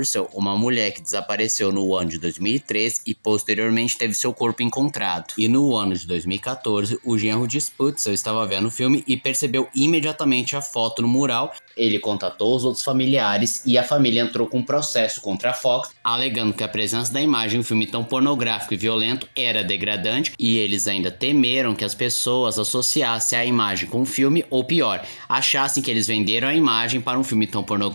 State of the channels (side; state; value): both; inverted; correlation -1.00